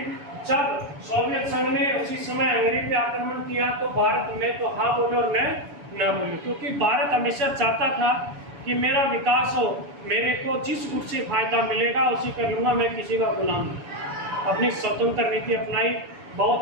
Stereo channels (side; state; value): left; late; 7.0 ms